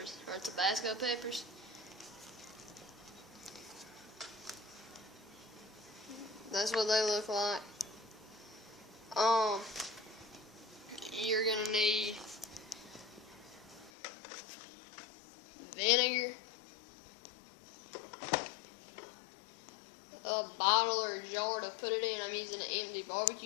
or Tabasco peppers. That's what they look like. You're going to need vinegar, a bottle or a jar to put it in. I'm using an empty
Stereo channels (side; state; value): right; drops out; at 13.9 s